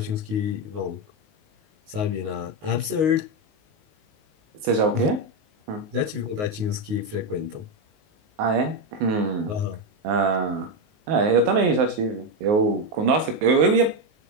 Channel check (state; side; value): late; left; 19 ms